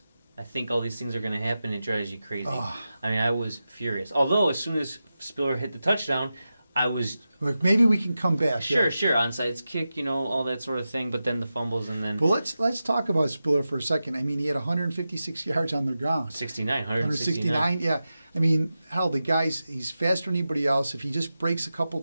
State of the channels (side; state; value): both; inverted; correlation -0.92